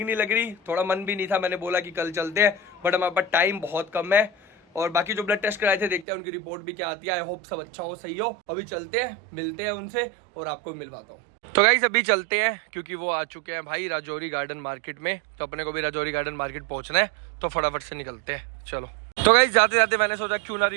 नहीं लग रही, थोड़ा मन भी नहीं था। मैंने बोला कि कल चलते हैं, बट हमारे पास टाइम बहुत कम है। और बाकी जो ब्लड टेस्ट कराए थे, देखते हैं उनकी रिपोर्ट भी क्या आती है। आई होप सब अच्छा हो, सही हो। अभी चलते हैं, मिलते हैं उनसे और आपको मिलवाता हूँ। तो गाइस अभी चलते हैं, क्योंकि वो आ चुके हैं भाई राजौरी गार्डन मार्केट में। तो अपने को भी राजौरी गार्डन मार्केट पहुंचना है, तो फटाफट से निकलते हैं। चलो। तो गाइस जाते जाते मैंने सोचा क्यों ना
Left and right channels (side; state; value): left; drops out; at 6.1 s